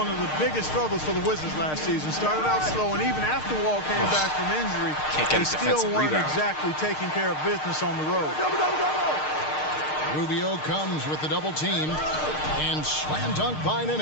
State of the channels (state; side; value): late; right; 6.5 ms